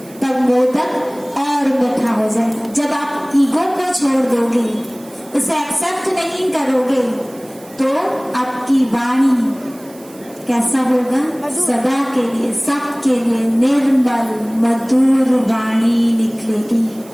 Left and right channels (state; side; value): noise; right; hiss, 24 dB below the sound